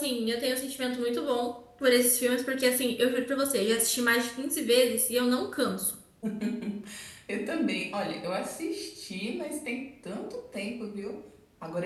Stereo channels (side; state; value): both; identical; correlation 1.00